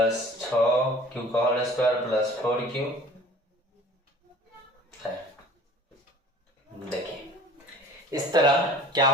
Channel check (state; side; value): normal; both; correlation 0.47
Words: 6q का होल स्क्वायर प्लस 4q है। देखिए इस तरह क्या